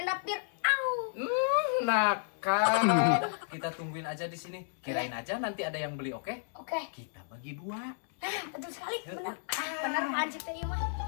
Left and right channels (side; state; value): right; silent; 56 dB below the other